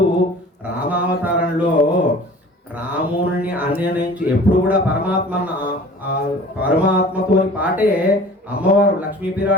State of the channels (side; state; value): both; normal; correlation 0.45